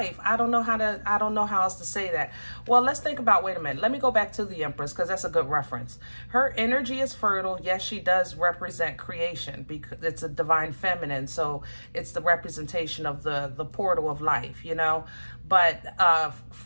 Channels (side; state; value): both; inverted; correlation -1.00